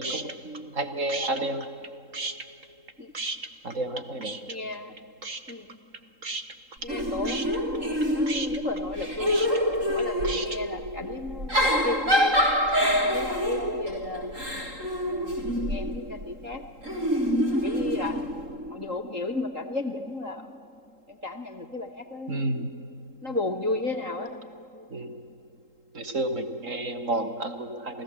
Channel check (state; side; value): late; left; 3.8 ms